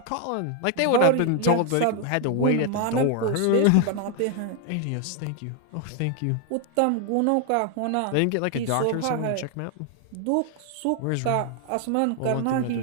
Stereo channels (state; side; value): different; both; correlation 0.01